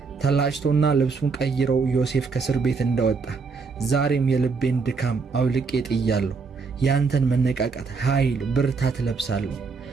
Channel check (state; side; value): quieter; left; 4.8 dB